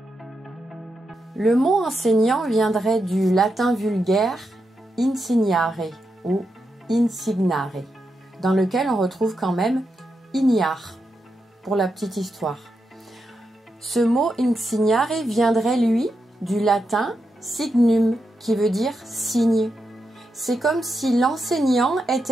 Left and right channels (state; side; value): normal; both; correlation 0.85